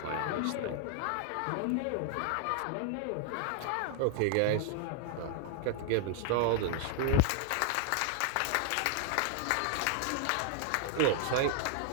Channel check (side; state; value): both; different; correlation 0.00